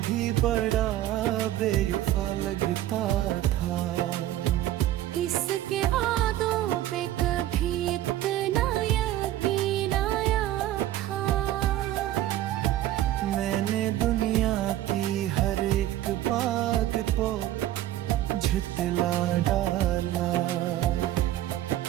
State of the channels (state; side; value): quieter; left; 13.6 dB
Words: भी बड़ा बेवफा लगता था। इसके आदों पे कभी इतना यकीन आया था, मैंने दुनिया की हर एक बात को झुठला डाला।